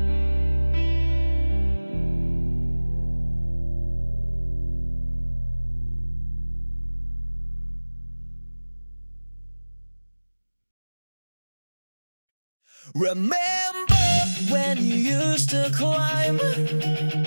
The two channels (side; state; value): both; inverted; correlation -1.00